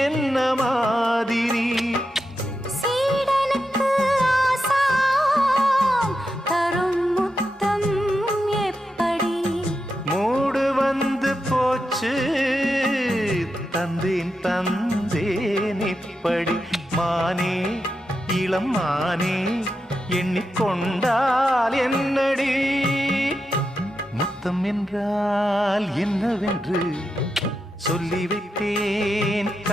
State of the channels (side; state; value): both; normal; correlation 0.87